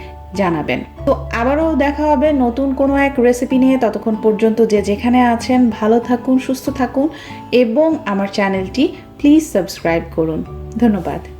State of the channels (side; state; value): both; identical; correlation 1.00